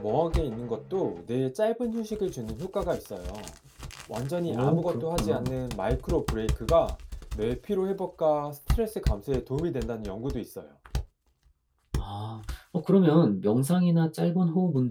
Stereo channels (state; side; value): identical; both; correlation 1.00